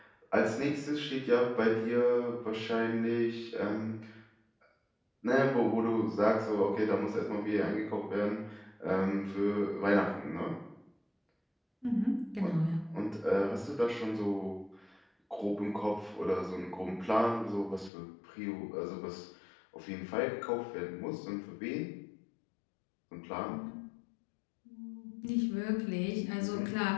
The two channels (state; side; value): drops out; right; at 17.9 s